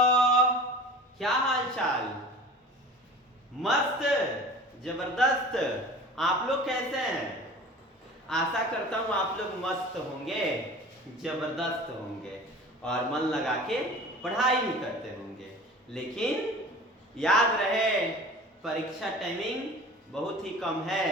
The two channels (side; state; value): both; normal; correlation 0.40